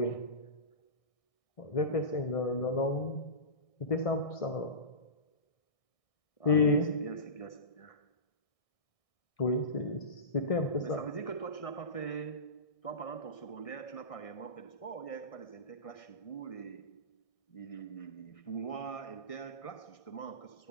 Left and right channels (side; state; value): right; late; 1.6 ms